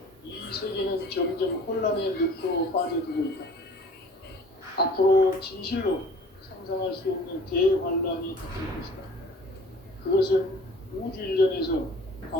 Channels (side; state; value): both; normal; correlation 0.48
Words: 이 세계는 점점 혼란의 늪으로 빠져들고 있다. 앞으로 진실로 상상할 수 없는 대환란이 닥칠 것이다. 그것은 우주 일련에서